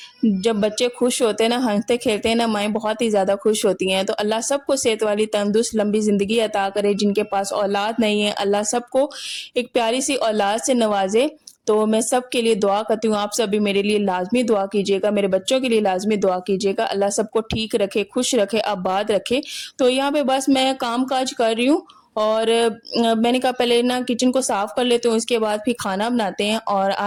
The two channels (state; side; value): identical; both; correlation 1.00